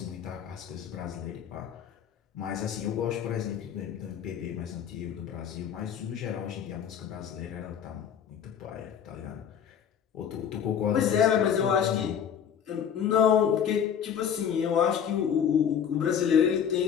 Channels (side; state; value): right; quieter; 8.3 dB